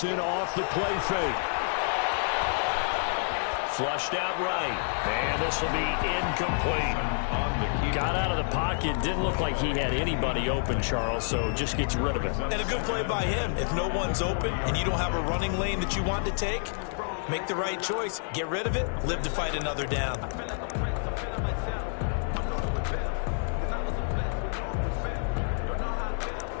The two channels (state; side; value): silent; right; digital silence